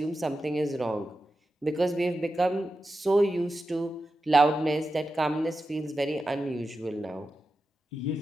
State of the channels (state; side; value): normal; both; correlation 0.91